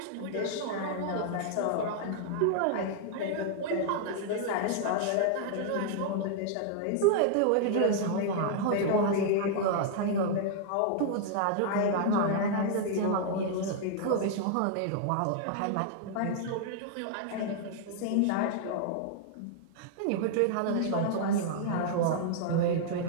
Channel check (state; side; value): different; both; correlation -0.01